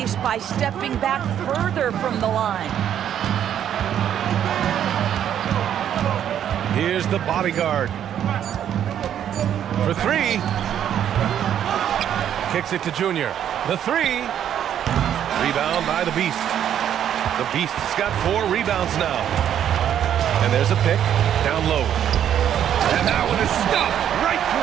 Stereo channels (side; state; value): left; quieter; 9.9 dB